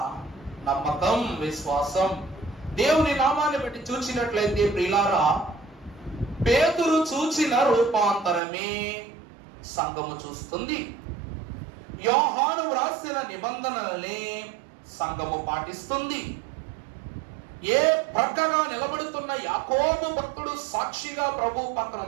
నమ్మకం, విశ్వాసం. దేవుని నామాన్ని బట్టి చూచినట్లయితే ప్రియులారా, పేతురు చూచిన రూపాంతరమే సంఘము చూస్తుంది. యోహాను వ్రాసిన నిబంధనలనే సంఘము పాటిస్తుంది. ఏ ప్రక్కగా నిలబడుతున్న యాకోబు భక్తుడు సాక్షిగా ప్రభు పక్కన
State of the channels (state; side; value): drops out; left; at 8.4 s